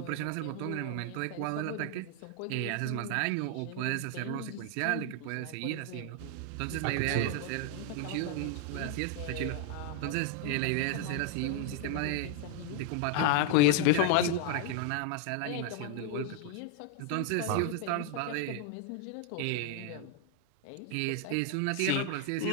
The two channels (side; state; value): both; different; correlation 0.00